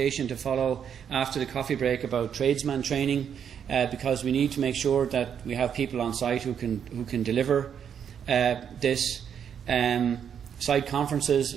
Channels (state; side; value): quieter; left; 8.1 dB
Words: to follow after the coffee break about tradesman training, because we need to make sure that we have people on site who can deliver this. Site